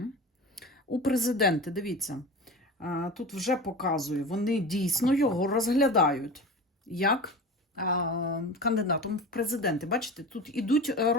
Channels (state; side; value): normal; both; correlation 0.32